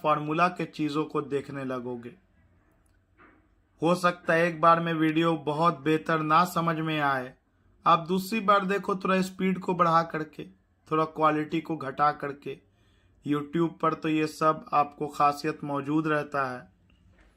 फॉर्मूला के चीजों को देखने लगोगे। हो सकता है एक बार में वीडियो बहुत बेहतर ना समझ में आए, आप दूसरी बार देखो थोड़ा स्पीड को बढ़ा करके, थोड़ा क्वालिटी को घटा करके। YouTube पर तो ये सब आपको खासियत मौजूद रहता है।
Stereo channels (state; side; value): identical; both; correlation 1.00